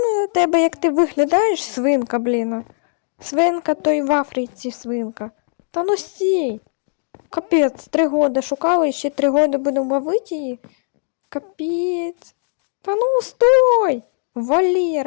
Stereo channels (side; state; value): right; silent; digital silence